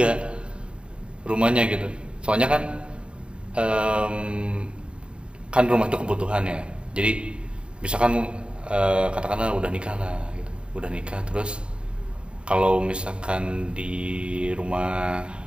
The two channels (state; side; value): late; left; 0.054 ms